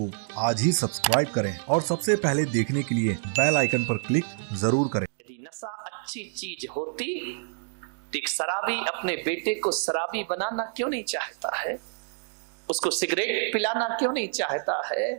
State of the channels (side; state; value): left; silent; digital silence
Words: आज ही सब्सक्राइब करें और सबसे पहले देखने के लिए बेल आइकन पर क्लिक जरूर करें। यदि नशा अच्छी चीज होती तो एक शराबी अपने बेटे को शराबी बनाना क्यों नहीं चाहता है? उसको सिगरेट पिलाना क्यों नहीं चाहता है?